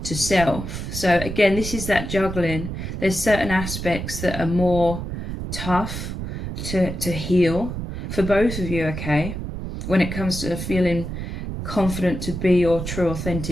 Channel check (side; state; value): right; noise; rumble, 6 dB below the sound